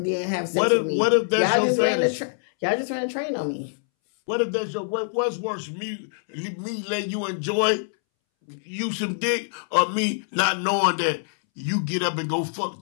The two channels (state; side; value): silent; right; 62 dB below the other